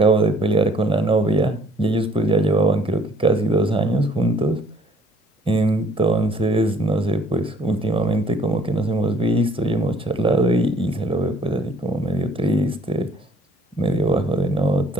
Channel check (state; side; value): normal; both; correlation 0.58